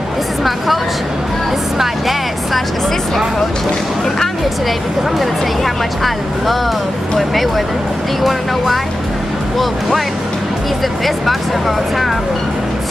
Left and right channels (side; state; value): both; normal; correlation 0.92